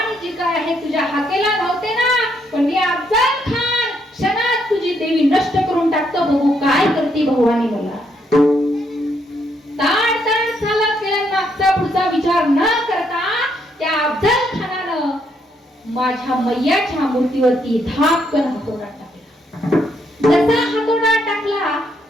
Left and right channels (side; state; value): both; normal; correlation 0.74